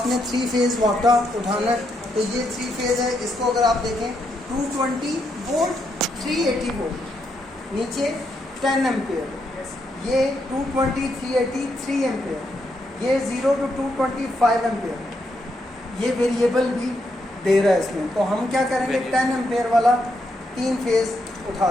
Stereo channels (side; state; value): both; normal; correlation 0.79